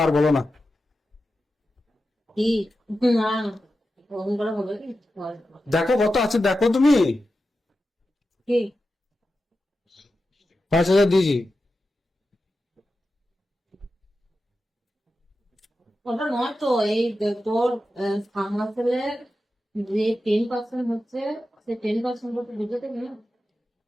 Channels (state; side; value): normal; both; correlation 0.91